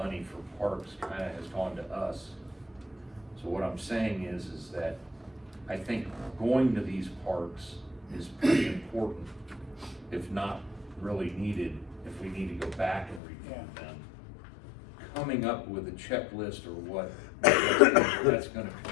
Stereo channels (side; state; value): right; drops out; at 13.2 s